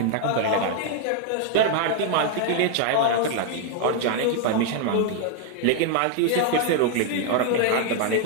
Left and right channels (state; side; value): different; both; correlation 0.00